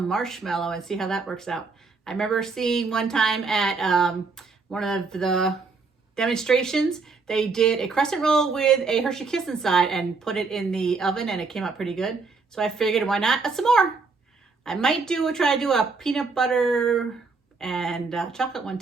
marshmallow and see how that works out. I remember seeing one time at one of the demonstrations, they did a crescent roll with a Hershey Kiss inside and put it in the oven, and it came out pretty good. So I figured, why not some more? I might try to do a peanut butter and chocolate one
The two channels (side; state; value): left; quieter; 4.3 dB